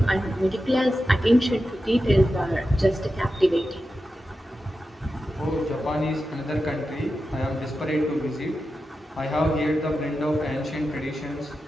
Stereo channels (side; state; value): both; normal; correlation 0.91